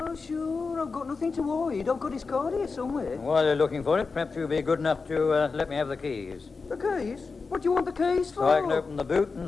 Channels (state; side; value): quieter; right; 4.5 dB